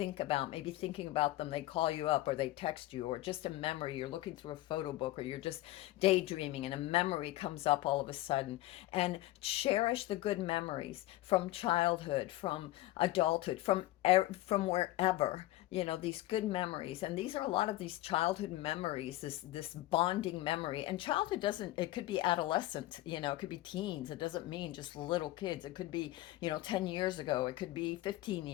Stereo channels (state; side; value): quieter; right; 16.8 dB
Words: about, maybe thinking about them, they call you up or they text you, or just a memory, you're looking through a photo book, or you're just daydreaming and a memory comes up all of a sudden. And cherish the good memories from childhood, from adulthood, from wherever, these good memories. And these are a lot of these childhood memories, this bonding memory. And childhood doesn't, it could be adolescent, it could be teens. It doesn't mean just little kids. It could be 10 years ago, it could be 15